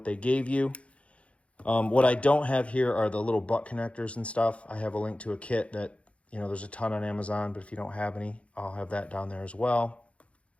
they gave you. What I don't have here are the little butt connectors and stuff. I have a link to a kit that, there's a ton on Amazon, but if you don't have any, I'll have that down there as well.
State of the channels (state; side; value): late; right; 0.062 ms